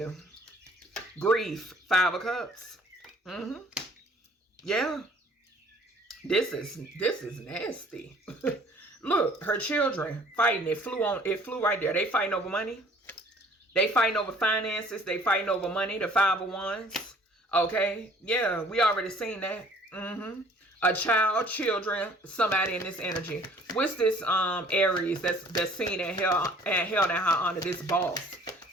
Grief, 5 of Cups. Yeah. This is nasty. Look, her children fighting. It flew right there. They fighting over money. They fighting over finances. They fighting over money. The 5 of Wands. Okay. Yeah, we already seen that. A child, children, somebody in this energy. What's this Aries that's seen and held in high honor? This boss.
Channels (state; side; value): normal; both; correlation 0.55